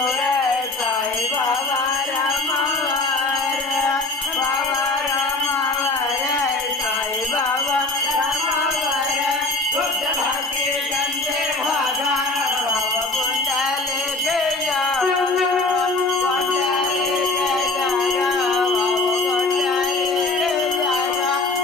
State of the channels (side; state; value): right; quieter; 3.2 dB